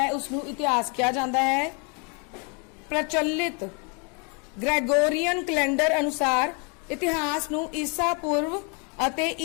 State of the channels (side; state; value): right; quieter; 34.9 dB